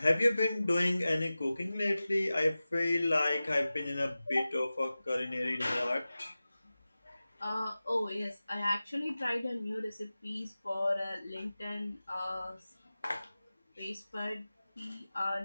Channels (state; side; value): inverted; both; correlation -0.96